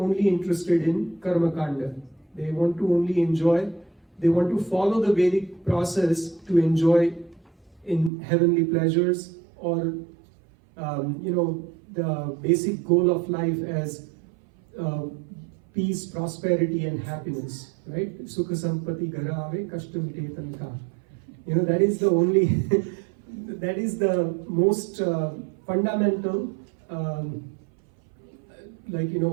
interested in Karma Kanda. They want to only enjoy, they want to follow the Vedic process to enjoy in heavenly pleasures, or the basic goal of life as peace, prosperity, and happiness, right? Sukha sampati garave kashtamite tanka. That is the only, that is the most fundamental,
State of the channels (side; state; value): left; drops out; at 8.1 s